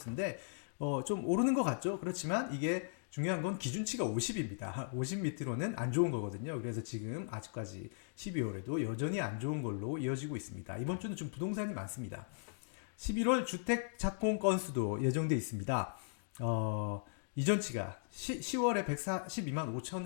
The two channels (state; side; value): silent; right; digital silence